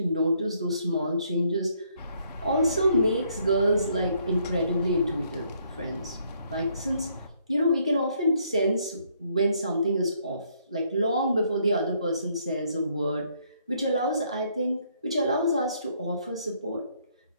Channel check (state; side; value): inverted; both; correlation -0.69